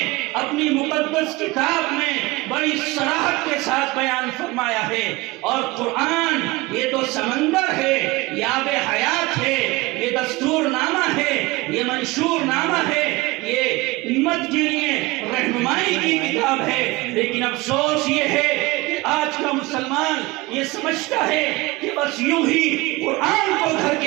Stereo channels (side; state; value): left; quieter; 22.0 dB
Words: اپنی مقدس کتاب میں بڑی صراحت کے ساتھ بیان فرمایا ہے، اور قرآن یہ تو سمندر ہے، یہ آب حیات ہے، یہ دستور نامہ ہے، یہ منشور نامہ ہے، یہ امت کے لیے رہنمائی کی کتاب ہے۔ لیکن افسوس یہ ہے کہ آج کا مسلمان یہ سمجھتا ہے کہ بس یوں ہی قرآن کو گھر